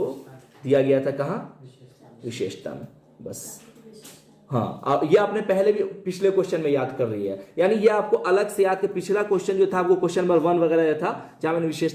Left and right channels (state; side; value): identical; both; correlation 1.00